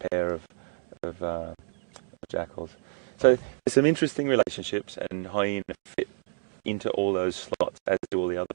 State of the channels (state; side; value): silent; left; 59 dB below the other